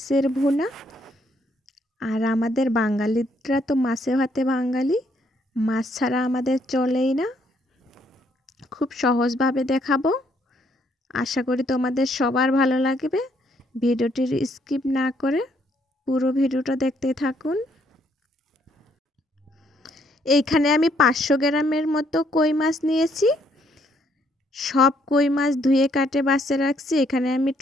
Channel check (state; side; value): normal; both; correlation 0.70